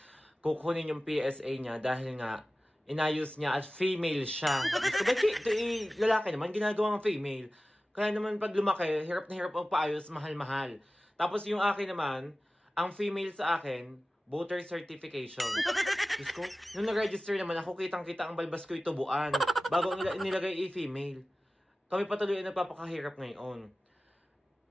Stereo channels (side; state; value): both; normal; correlation 0.96